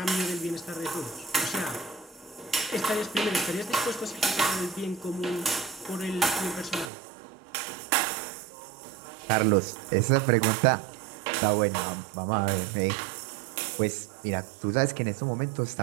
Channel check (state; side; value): drops out; left; at 6.9 s